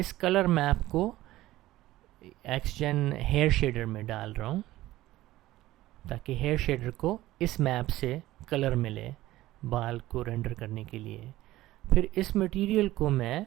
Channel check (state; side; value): quieter; left; 16.2 dB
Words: कलर मैप को XGen हेयर शेडर में डाल रहा हूँ, ताकि हेयर शेडर को इस मैप से कलर मिले बाल को रेंडर करने के लिए। फिर इस मटेरियल को मैं